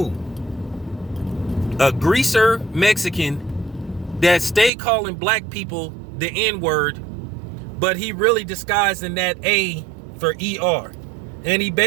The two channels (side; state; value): left; drops out; at 4.7 s